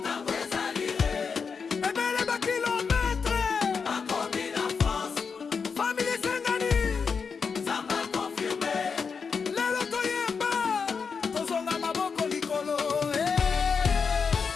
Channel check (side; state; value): right; quieter; 5.6 dB